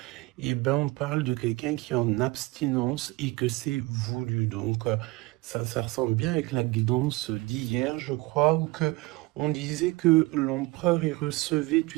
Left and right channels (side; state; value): left; quieter; 21.5 dB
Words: et ben on parle de quelqu'un qui est en abstinence et que c'est voulu. Donc ça ressemble bien avec la guidance d'hier, je crois, où que on disait que l'empereur il recevait,